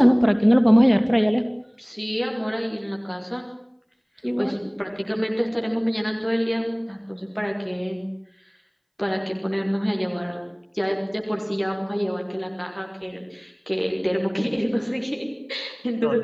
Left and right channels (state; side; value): identical; both; correlation 1.00